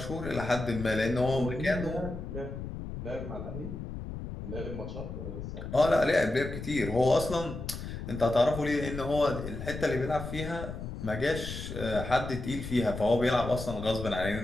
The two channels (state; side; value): noise; left; rumble, 8 dB below the sound